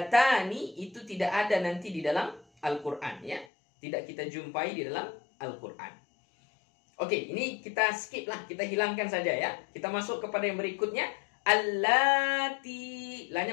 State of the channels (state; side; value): drops out; right; at 3.5 s